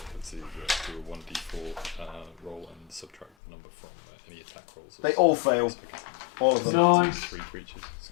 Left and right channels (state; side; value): drops out; right; at 3.3 s